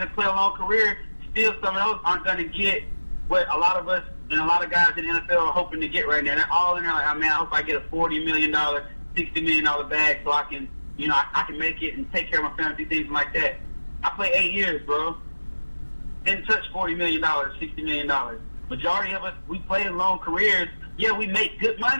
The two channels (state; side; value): inverted; both; correlation -1.00